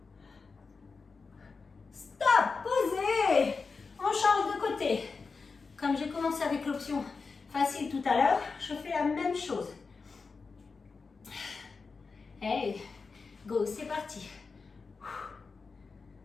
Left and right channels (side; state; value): right; quieter; 4.6 dB